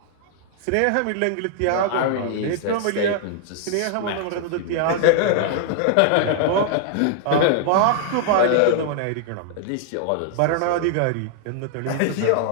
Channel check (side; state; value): both; different; correlation 0.00